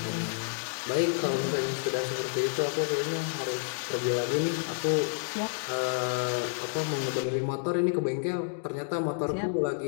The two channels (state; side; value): silent; right; digital silence